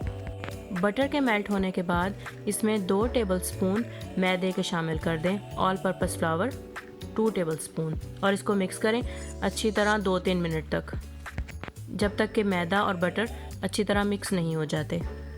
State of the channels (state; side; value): identical; both; correlation 1.00